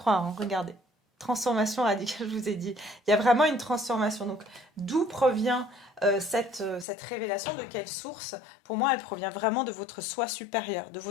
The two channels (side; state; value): right; drops out; at 6.9 s